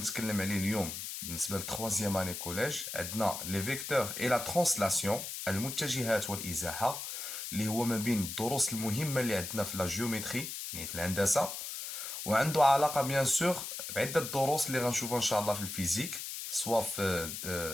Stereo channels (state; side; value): noise; left; hiss, 6 dB below the sound